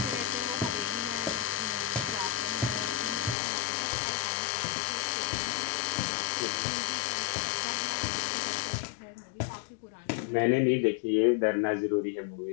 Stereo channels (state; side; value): drops out; right; at 3.4 s